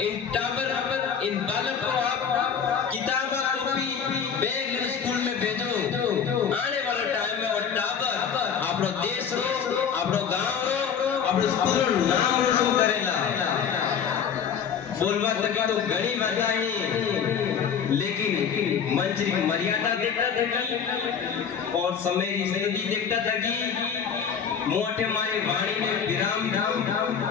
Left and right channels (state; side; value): quieter; right; 7.2 dB